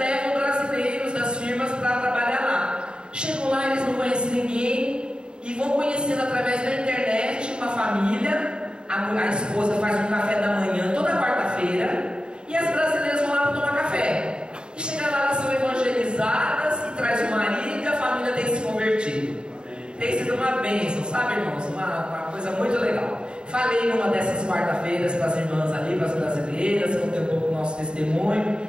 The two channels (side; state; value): left; late; 0.050 ms